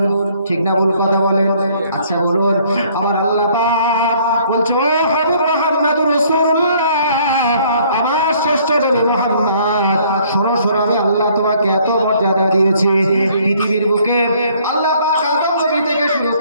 ঠিক না ভুল কথা বলেন? আচ্ছা বলুন আমার আল্লাহ পাক বলছে ও হাবিব মুহাম্মাদুর রাসূলুল্লাহ, আমার শ্রেষ্ঠ নবী মুহাম্মদ, শোনো আমি আল্লাহ তোমাকে এত মর্যাদা দিয়েছি। পৃথিবীর বুকে আল্লাহ পাক আদম নবী থেকে শুরু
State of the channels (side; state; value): both; inverted; correlation -0.61